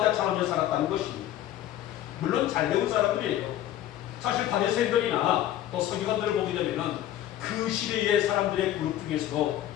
살았다는 것입니다. 물론 잘 배운 사람들이에요. 사실 바리새인들이나 또 서기관들을 보게 되면은 그 시대의 사람들의 그룹 중에서도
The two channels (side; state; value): right; quieter; 12.4 dB